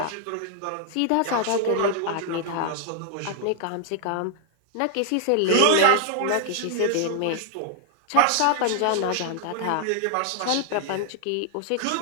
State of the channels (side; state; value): both; different; correlation -0.01